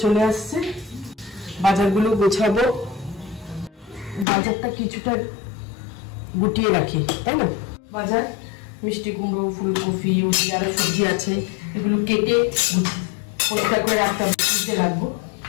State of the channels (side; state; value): right; drops out; at 4.2 s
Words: চলে আসছে, বাজারগুলো গোছাবো। বাজারটা কিছুটা গুটিয়ে রাখি, তাই না? বাজার মিষ্টি কুমড়ো, ফুলকপি, আরো সবজি আছে, এগুলো কেটে পরিষ্কার করে রাখতে হবে, ফ্রিজে রাখবো।